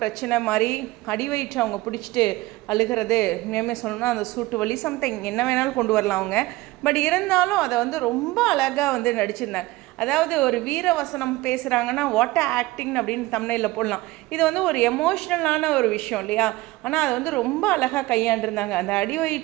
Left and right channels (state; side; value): quieter; left; 19.6 dB